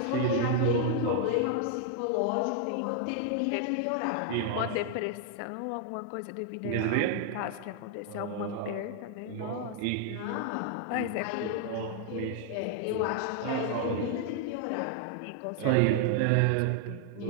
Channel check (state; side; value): different; both; correlation 0.00